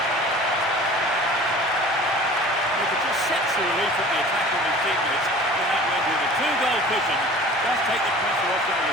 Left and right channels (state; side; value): normal; both; correlation 0.43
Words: He could just set the relief from the attack on his teammates. And that went with a 2-goal cushion. Does take the pressure off the